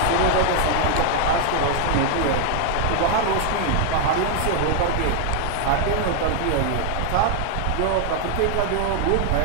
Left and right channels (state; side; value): different; both; correlation 0.00